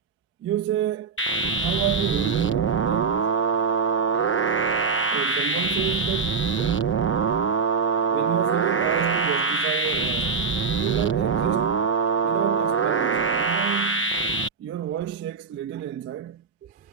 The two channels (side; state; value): left; quieter; 5.3 dB